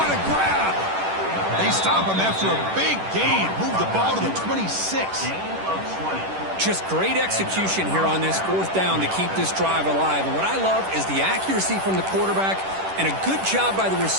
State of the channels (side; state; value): left; late; 10 ms